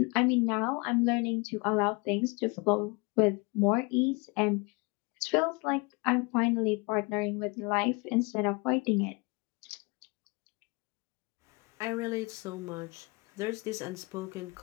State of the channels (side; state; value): right; quieter; 28.7 dB